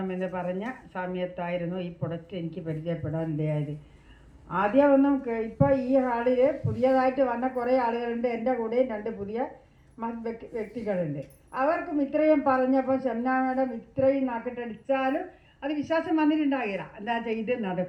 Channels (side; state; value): both; identical; correlation 1.00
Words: പറഞ്ഞ സമയത്തായിരുന്നു ഈ പ്രൊഡക്റ്റ് എനിക്ക് പരിചയപ്പെടാൻ ഇടയായത്. ആദ്യമൊന്നും ഇപ്പോൾ ഈ ഹാളിൽ പുതിയതായിട്ട് വന്ന കുറേ ആളുകളുണ്ട്. എൻ്റെ കൂടെയും 2 പുതിയ വ്യക്തികളുണ്ട്. അവർക്കും ഇത്രയും പറഞ്ഞപ്പോൾ ഷംന മാഡം ഇത്രയും നാക്കിട്ടടിച്ചാലും അത് വിശ്വാസം വന്നിട്ടുണ്ടാകില്ല. എന്താ ഇത്